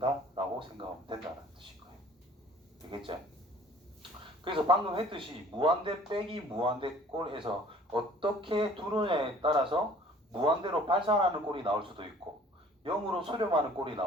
라고 생각하면 된다는 뜻인 거예요. 되겠죠? 그래서 방금 했듯이 무한대 빼기 무한대 꼴에서 어떻게 두느냐에 따라서 무한대로 발산하는 꼴이 나올 수도 있고 0으로 수렴하는 꼴이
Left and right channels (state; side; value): normal; both; correlation 0.52